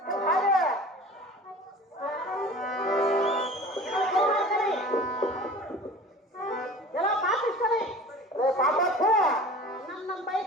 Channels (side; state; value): both; normal; correlation 0.41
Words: ಹಾಗೆ ಎಲ್ಲ ಪಾಪಿಸ್ತಾರೆ. ಪಾಪಪ್ಪ ನನ್ನ